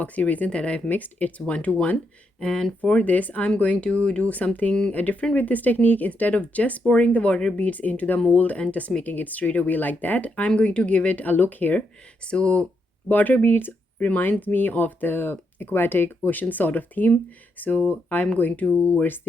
resin that I've mixed. It's 1:1. And for this I'm going to do something different with this technique. Instead of just pouring the water beads into the mold and just making it straight away like that, I'm going to give it a look here. So water beads reminds me of the aquatic ocean sort of theme, so I'm going towards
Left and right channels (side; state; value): both; normal; correlation 0.80